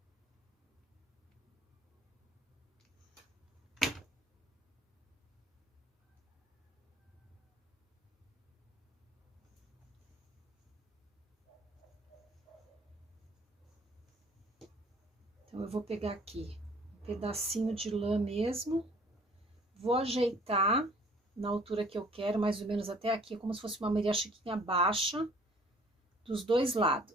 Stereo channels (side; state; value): both; normal; correlation 0.55